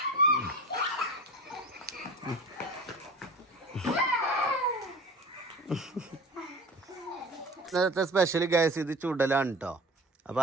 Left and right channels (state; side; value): normal; both; correlation 0.37